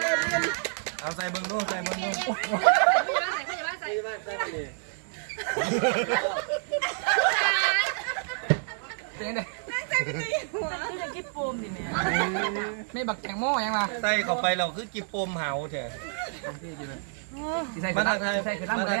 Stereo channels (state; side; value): silent; left; 59 dB below the other